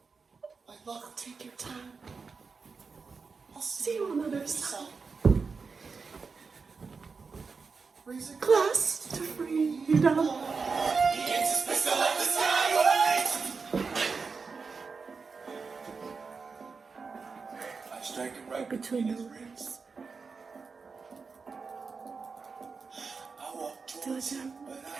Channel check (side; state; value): left; quieter; 4.9 dB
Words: I'll take your time. I'll see you on the other side. Raise a glass to freedom. Between the ribs. Do it down.